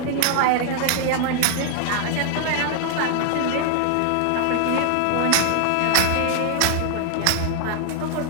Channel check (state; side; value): different; both; correlation 0.00